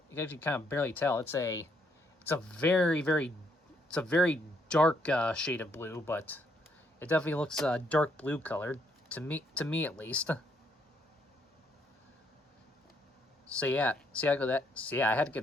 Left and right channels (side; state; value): both; normal; correlation 0.72